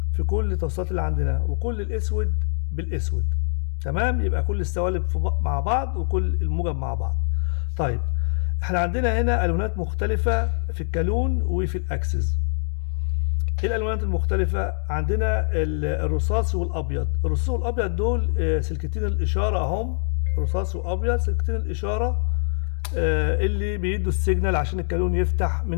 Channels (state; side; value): silent; right; digital silence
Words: في كل التوصيلات اللي عندنا، وكل الأسود بالأسود. تمام، يبقى كل السوالب مع بعض وكل الموجب مع بعض. طيب احنا عندنا هنا ألوانات مختلفة في الكالون وفي الأكسس. ايه الألوانات المختلفة؟ عندنا الرصاصي والأبيض. الرصاصي والأبيض دول سلكتين الإشارة أهم، رصاصي وأبيض سلكتين الإشارة اللي بيدوا السيجنال عشان الكالون يفتح